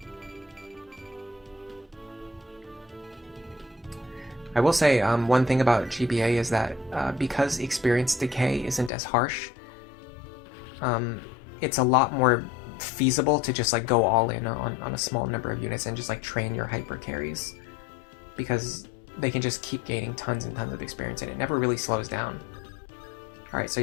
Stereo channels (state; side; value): drops out; right; at 8.9 s